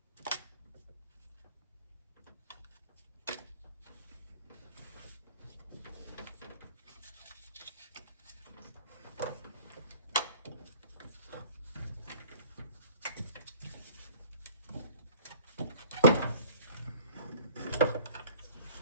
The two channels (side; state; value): both; inverted; correlation -0.49